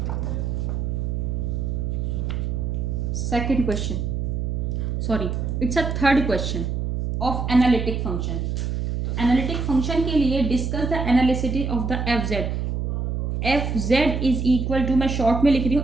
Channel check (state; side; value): noise; right; hum, 1 dB below the sound